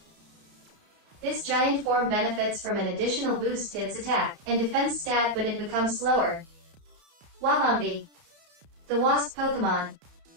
This giant form benefits from an additional boost to its attack and defense stat, but it becomes slower. Wabombi, the wasp Pokemon.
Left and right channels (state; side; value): late; left; 31 ms